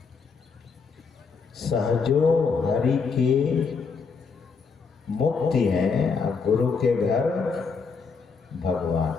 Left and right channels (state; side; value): quieter; right; 5.2 dB